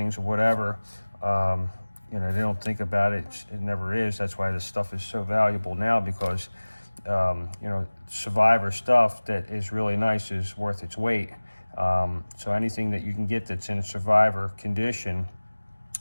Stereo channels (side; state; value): both; inverted; correlation -1.00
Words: or whatever, you know, they don't think about it. It never is. That's why this stuff is so valuable now, because, you know, Survivor stuff that is really nice is worth its weight. So anything that you can get that's in a Survivor condition